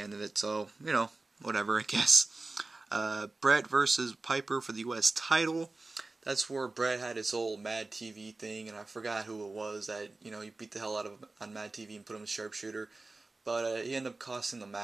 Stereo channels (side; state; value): left; quieter; 3.4 dB